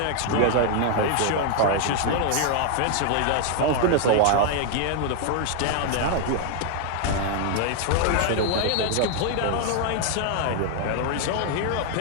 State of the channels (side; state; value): both; different; correlation 0.00